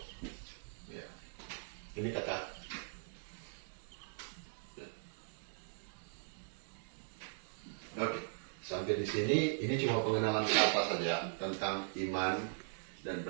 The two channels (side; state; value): left; silent; digital silence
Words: Ya. Ini kata. Oke, sampai di sini ini cuma pengenalan kata saja tentang iman dan